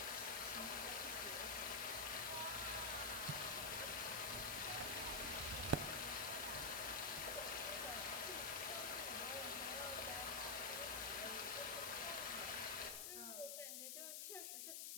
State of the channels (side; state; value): left; noise; hiss, 3 dB below the sound